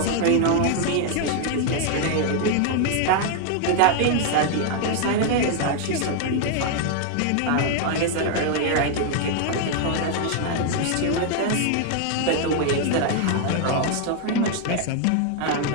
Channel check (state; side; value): different; both; correlation 0.00